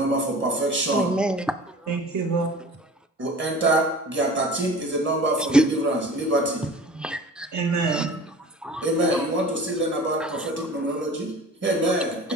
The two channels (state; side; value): normal; both; correlation 0.41